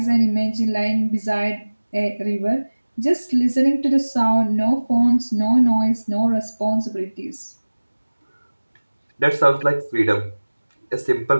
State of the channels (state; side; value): inverted; both; correlation -1.00